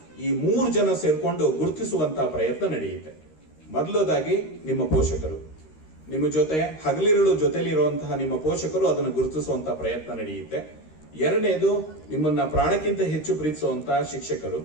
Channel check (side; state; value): right; late; 13 ms